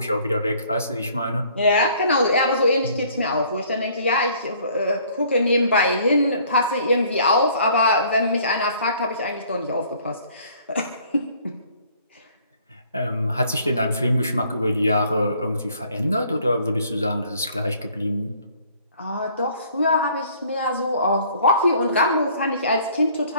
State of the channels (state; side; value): inverted; both; correlation -0.58